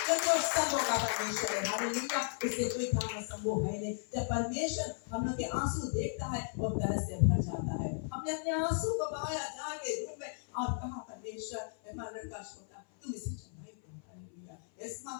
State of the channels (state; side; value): silent; right; 54 dB below the other